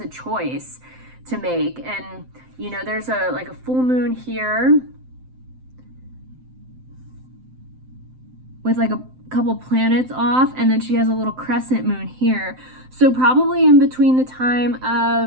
choice to make. And, you know, there's a full moon here with like a couple planets off, and then she has a little crescent moon here. So probably in between the time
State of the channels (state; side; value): late; left; 7.8 ms